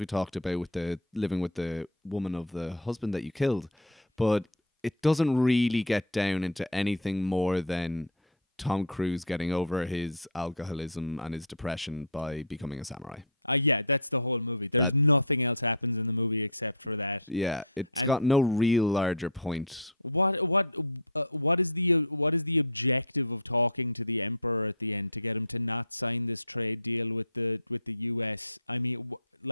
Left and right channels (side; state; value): both; normal; correlation -0.05